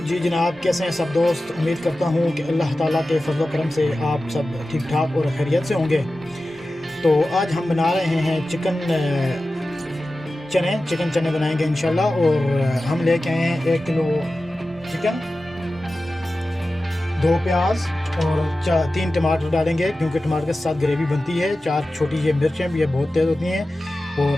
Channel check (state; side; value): normal; both; correlation 0.94